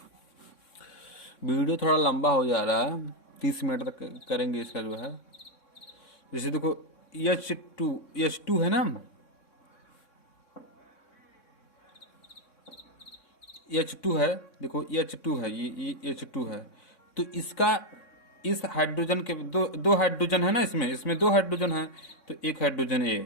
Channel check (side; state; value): right; late; 3.6 ms